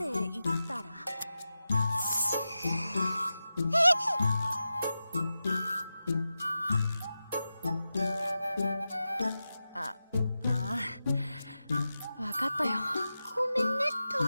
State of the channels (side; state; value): both; inverted; correlation -0.92